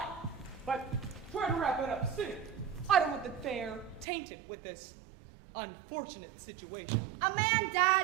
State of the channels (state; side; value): drops out; left; at 4.0 s